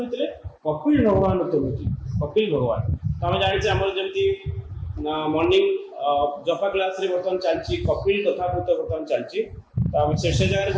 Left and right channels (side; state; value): both; identical; correlation 1.00